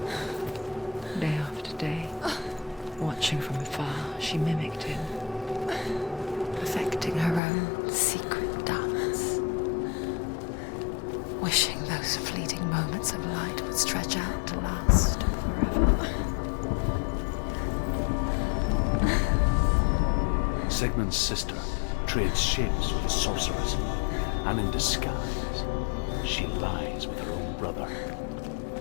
Day after day, watching from afar, she mimicked him, perfecting her own secret dance, wishing those fleeting moments of light would stretch out to last forever. Sigmund's sister trades shapes with a sorceress, and in disguise, she lies with her own brother.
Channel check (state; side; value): drops out; right; at 7.4 s